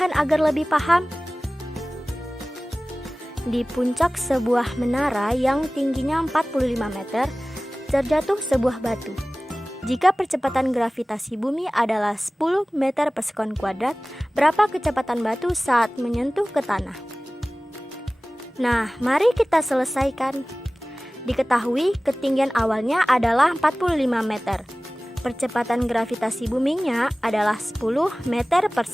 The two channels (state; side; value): normal; both; correlation 0.98